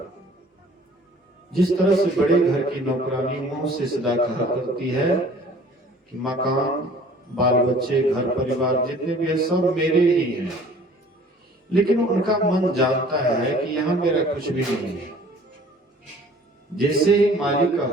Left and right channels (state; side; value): normal; both; correlation 0.51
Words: जिस तरह से बड़े घर की नौकरानी मुंह से सदा कहा करती है कि मकान, बाल बच्चे, घर परिवार जितने भी है सब मेरे ही हैं, लेकिन उनका मन जानता है कि यहाँ मेरा कुछ भी नहीं है। जैसे ही मालिक का